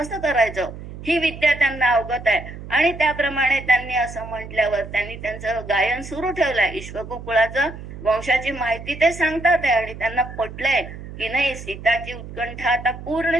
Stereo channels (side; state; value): right; noise; hum, 12 dB below the sound